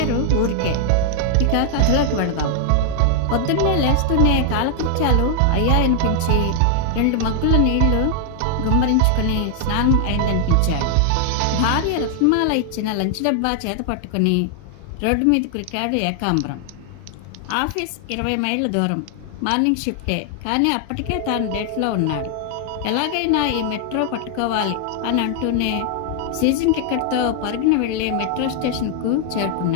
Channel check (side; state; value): both; different; correlation 0.00